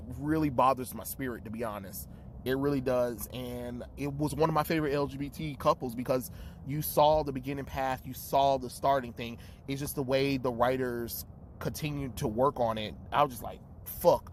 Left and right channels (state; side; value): identical; both; correlation 1.00